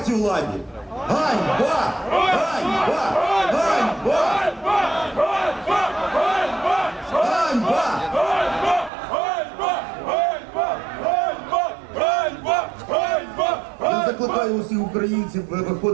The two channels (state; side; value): drops out; left; at 8.9 s